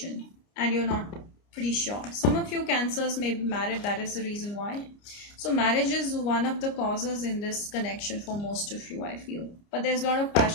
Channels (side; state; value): right; late; 29 ms